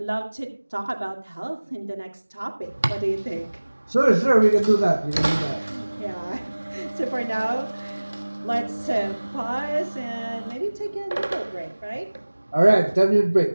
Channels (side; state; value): both; inverted; correlation -1.00